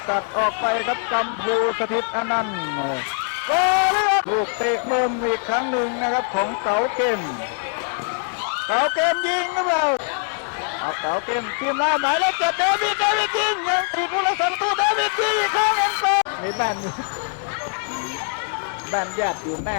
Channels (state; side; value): silent; right; 57 dB below the other